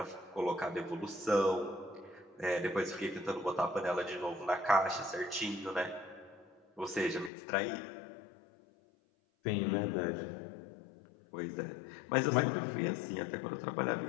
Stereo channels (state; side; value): drops out; right; at 7.3 s